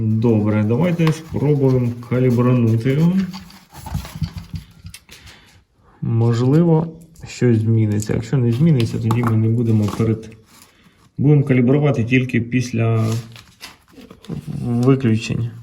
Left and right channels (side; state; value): both; identical; correlation 1.00